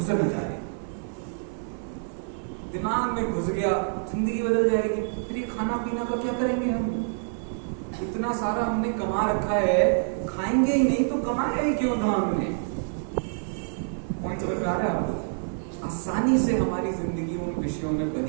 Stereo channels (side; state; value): left; silent; digital silence